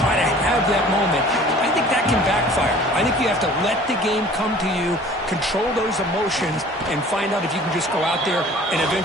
to have that moment, I think that can backfire. I think you have to let the game come to you, control those emotions, and find out if you can just go out there and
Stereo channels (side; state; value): both; normal; correlation 0.48